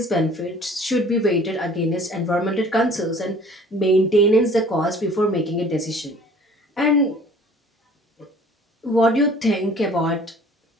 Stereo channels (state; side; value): normal; both; correlation 0.50